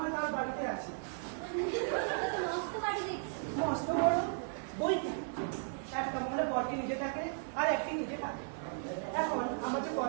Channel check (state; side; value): silent; left; digital silence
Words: তার বাড়িতে আছে, মস্ত বড় বইটি একটা মহলে বরকে নিজে থাকে আর একটি নিজে থাকে। এখন আমার যে